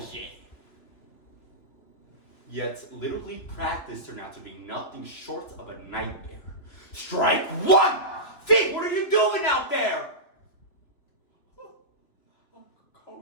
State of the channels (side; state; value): right; late; 2.8 ms